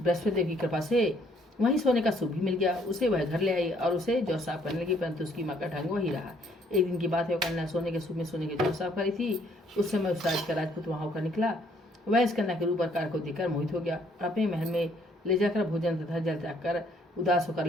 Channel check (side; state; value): both; normal; correlation 0.65